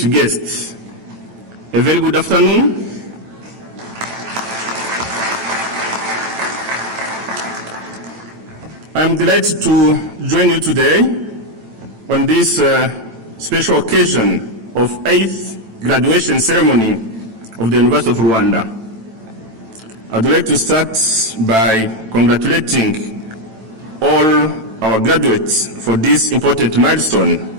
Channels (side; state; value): left; late; 9.0 ms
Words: guests, a very good afternoon. I am delighted to join you today on this special occasion of 8th graduation ceremony of the University of Rwanda. I would like to start by congratulating all our graduates for this important milestone